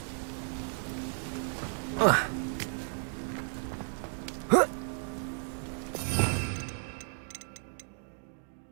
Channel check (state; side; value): silent; left; 55 dB below the other